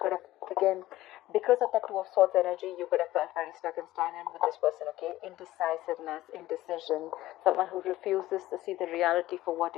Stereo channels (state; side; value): quieter; right; 15.9 dB